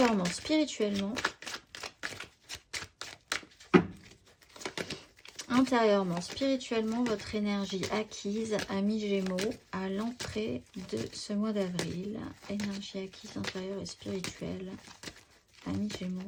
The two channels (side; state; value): both; identical; correlation 1.00